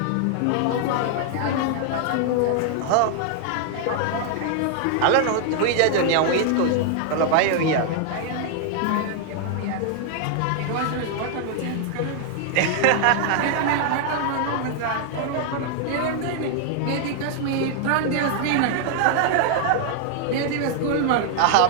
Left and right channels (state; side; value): different; both; correlation 0.00